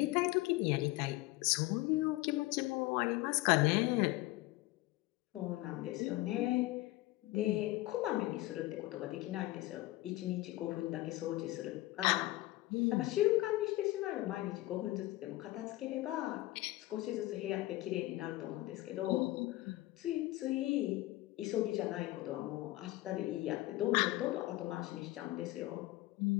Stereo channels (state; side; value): quieter; right; 18.4 dB